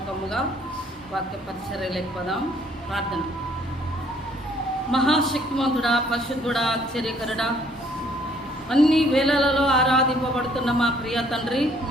వాక్య పరిచర్యలోకి పోదాం. ప్రార్థన. మహాశక్తిమంతుడా, పరిశుద్ధుడా, ఆశ్చర్యకరుడా, అన్ని వేళలలో ఆరాధింపబడుతున్న మా ప్రియ తండ్రి,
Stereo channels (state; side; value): normal; both; correlation 0.63